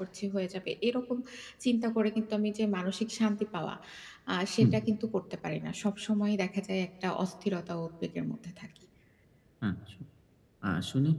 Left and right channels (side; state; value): both; identical; correlation 1.00